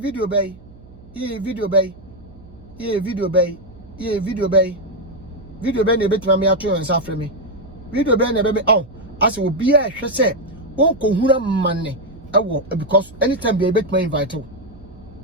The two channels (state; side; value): noise; right; hum, 22 dB below the sound